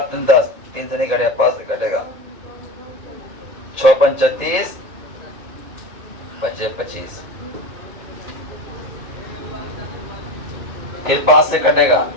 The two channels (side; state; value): left; late; 2.2 ms